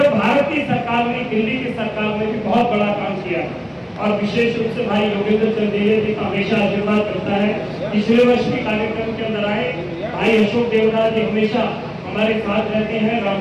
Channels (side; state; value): both; identical; correlation 1.00